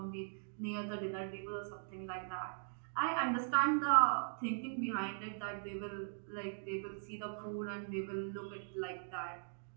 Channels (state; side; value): silent; left; digital silence